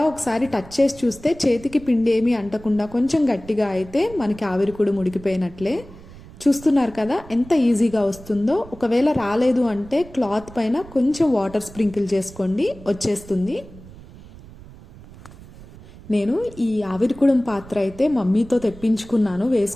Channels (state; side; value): noise; right; rumble, 19 dB below the sound